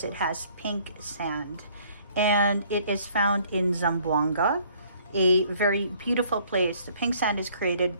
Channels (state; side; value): inverted; both; correlation -0.60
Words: it has pink sand, and it is found in Zamboanga, a very beautiful place. The pink sand is created